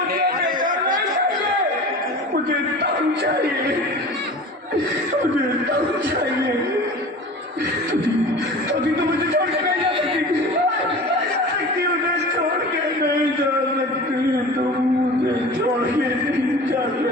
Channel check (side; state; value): both; normal; correlation 0.37